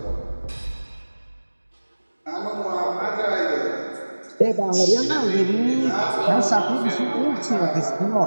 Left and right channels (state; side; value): inverted; both; correlation -1.00